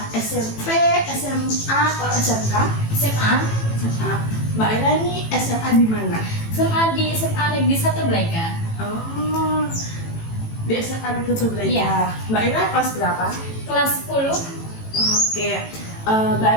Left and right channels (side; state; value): right; late; 18 ms